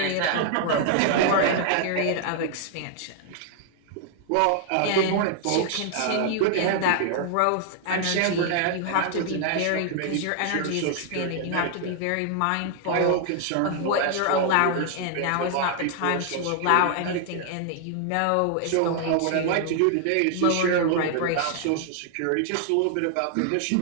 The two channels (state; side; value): different; both; correlation 0.00